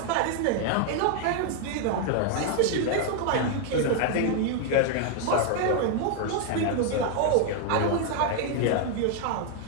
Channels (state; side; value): different; both; correlation 0.00